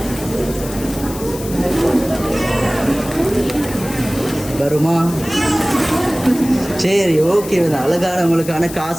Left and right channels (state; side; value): noise; left; hiss, 13 dB below the sound